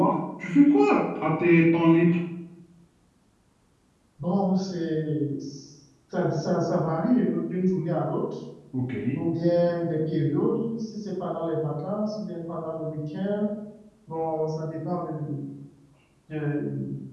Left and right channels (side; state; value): both; identical; correlation 1.00